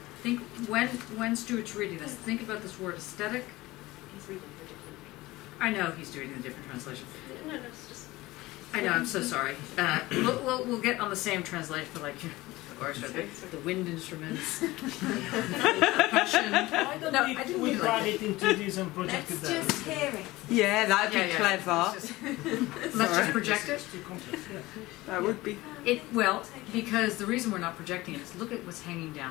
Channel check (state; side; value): quieter; right; 19.2 dB